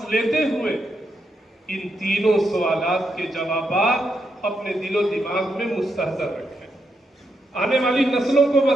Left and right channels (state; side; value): normal; both; correlation 0.82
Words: लेते हुए इन तीनों सवालात के जवाबात अपने दिलो दिमाग में मुस्तहज़र रखें। आने वाली नस्लों को